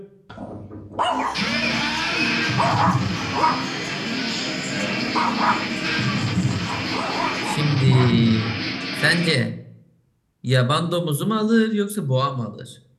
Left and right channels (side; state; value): both; identical; correlation 1.00